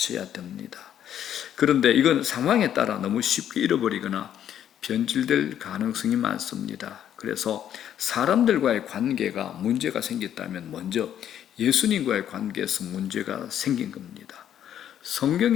됩니다. 그런데 이건 상황에 따라 너무 쉽게 잃어버리거나 변질될 가능성이 많습니다. 그래서 사람들과의 관계가 문제가 생겼다면 먼저 예수님과의 관계에서 문제가 생긴 겁니다.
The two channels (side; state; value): right; quieter; 10.2 dB